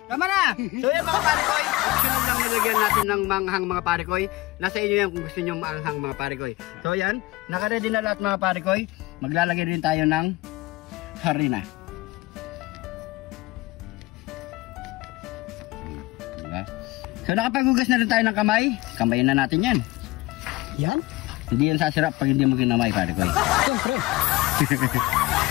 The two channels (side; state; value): right; quieter; 20.1 dB